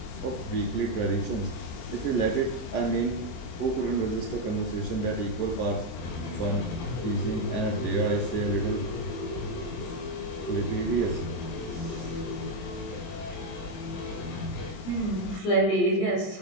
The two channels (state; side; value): late; right; 23 ms